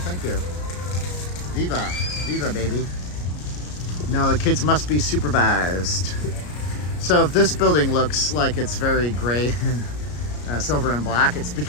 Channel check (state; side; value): late; right; 33 ms